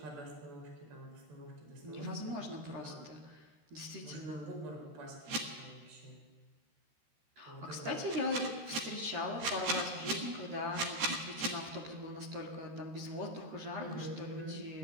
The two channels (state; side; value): late; left; 13 ms